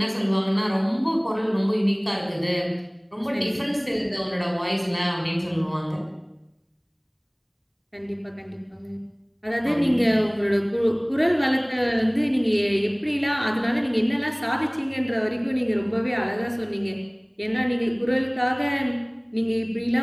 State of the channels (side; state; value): both; identical; correlation 1.00